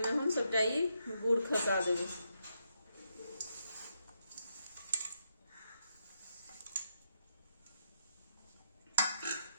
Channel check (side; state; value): both; inverted; correlation -0.80